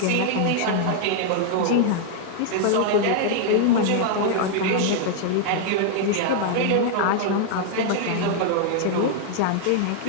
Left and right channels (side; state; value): both; different; correlation 0.00